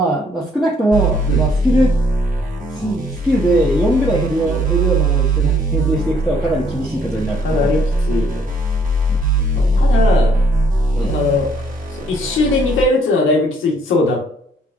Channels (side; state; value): both; normal; correlation 0.65